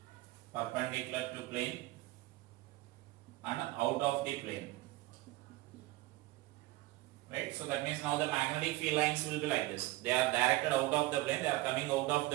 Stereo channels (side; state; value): left; quieter; 18.6 dB